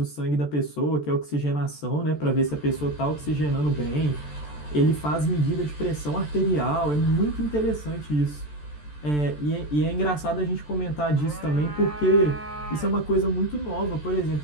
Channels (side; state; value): right; late; 14 ms